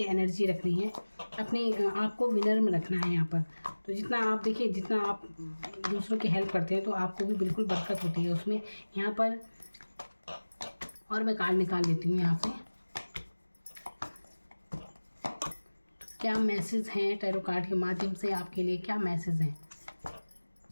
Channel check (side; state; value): both; inverted; correlation -1.00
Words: एनर्जी रखनी है, अपने आप को विनर में रखना है यहाँ पर। तो जितना आप देखिए, जितना आप दूसरों की हेल्प करते हैं तो आपको भी बिल्कुल बरकत होती है उसमें यहाँ पर। और मैं कार्ड निकाल लेती हूँ यहाँ से। क्या मैसेज हैं टैरो कार्ड के माध्यम से आपके लिए, क्या मैसेज हैं।